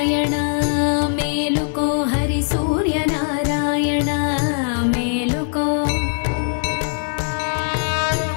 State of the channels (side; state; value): right; silent; 65 dB below the other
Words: మేలుకో హరి సూర్యనారాయణ మేలుకో